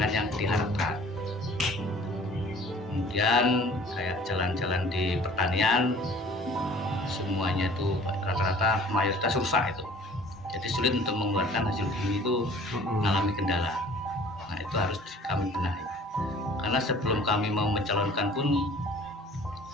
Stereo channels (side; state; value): both; normal; correlation 0.50